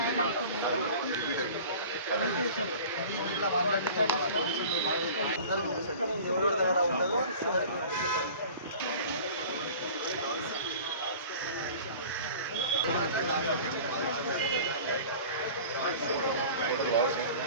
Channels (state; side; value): inverted; both; correlation -0.42